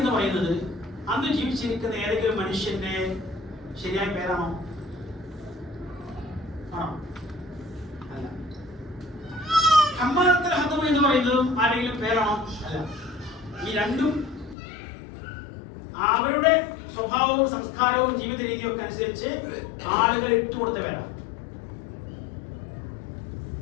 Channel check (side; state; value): right; drops out; at 14.6 s